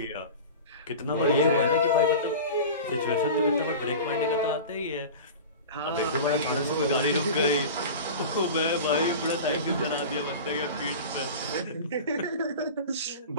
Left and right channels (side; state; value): both; inverted; correlation -0.33